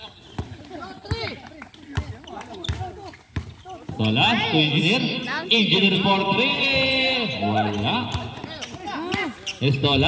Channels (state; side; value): identical; both; correlation 1.00